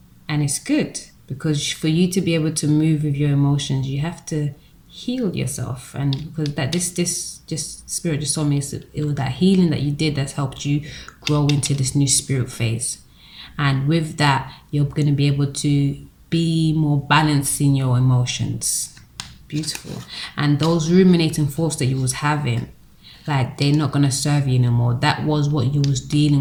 And it's good, because for you to be able to move with your emotions, you have to heal yourself. And because this spirit just told me it was that healing that you did that's helped you grow into this new spirit phase. And with that, you're going to be able to be more balanced in your emotions. Beautiful. And those ruminating thoughts that you was having, like, they're not going to serve you anymore. That was what you was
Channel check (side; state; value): both; identical; correlation 1.00